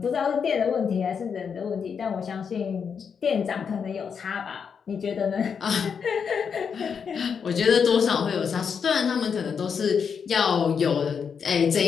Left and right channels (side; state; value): right; quieter; 6.6 dB